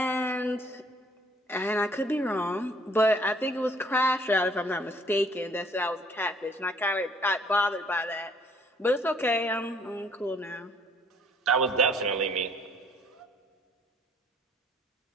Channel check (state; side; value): normal; both; correlation 0.60